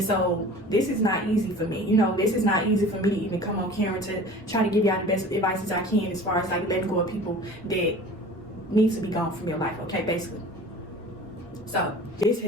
so this is not easy for me. You know, this is not easy for me to even come on camera to try to give y'all the best advice as I can as far as like letting go of people that need to be gone from your life, okay, basically. So this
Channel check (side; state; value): both; normal; correlation 0.41